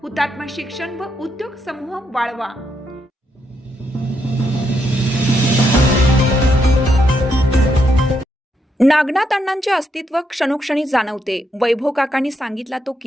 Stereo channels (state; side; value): normal; both; correlation 0.79